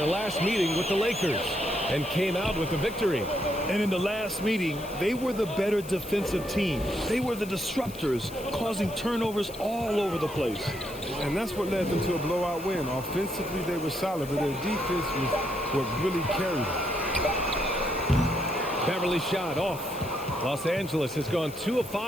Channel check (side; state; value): left; noise; hiss, 17 dB below the sound